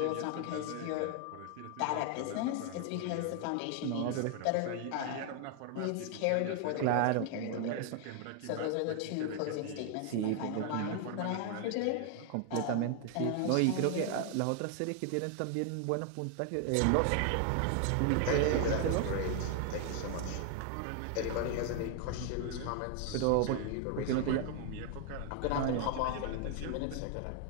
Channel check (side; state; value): both; different; correlation 0.00